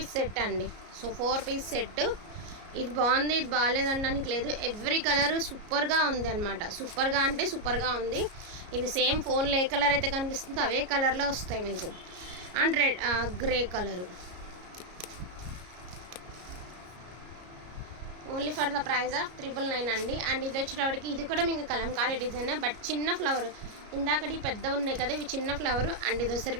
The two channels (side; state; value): left; late; 33 ms